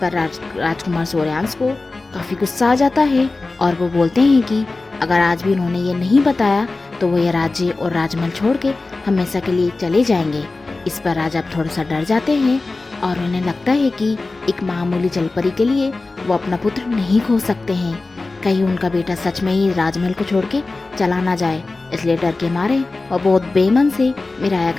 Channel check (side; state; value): right; quieter; 3.4 dB